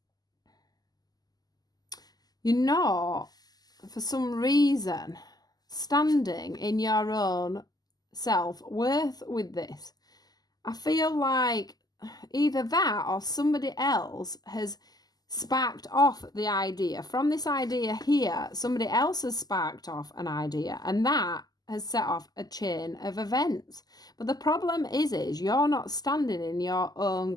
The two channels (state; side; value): late; right; 0.19 ms